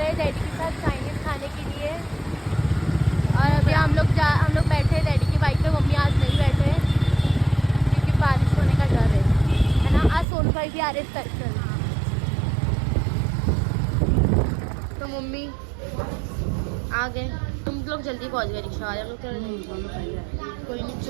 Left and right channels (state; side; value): drops out; left; at 10.2 s